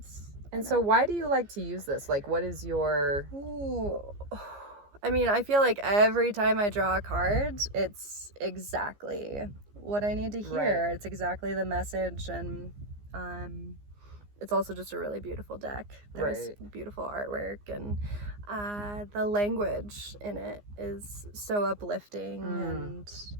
And so why do you like to use this? Like, what is your... Ooh. I mean, I feel like every time I draw a card, it's exactly what I need to hear. Right. It's exactly the message, and it's also just a really beautiful deck. There's beautiful artwork, and the language in it is so uplifting and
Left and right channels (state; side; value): late; left; 15 ms